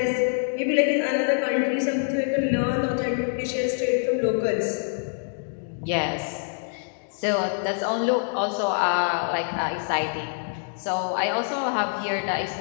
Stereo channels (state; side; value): silent; right; 61 dB below the other